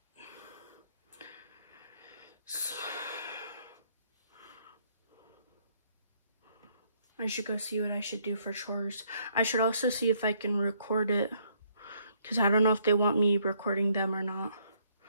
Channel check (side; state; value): both; inverted; correlation -0.68